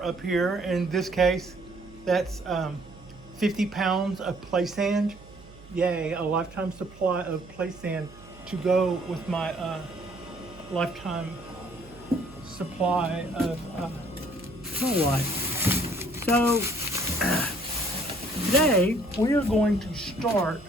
up here. In this case, that's 50 pounds of play sand. Yay, a lifetime supply of play sand to go with my lifetime supply of snow life. So today we are going to start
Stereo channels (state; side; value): noise; right; hum, 21 dB below the sound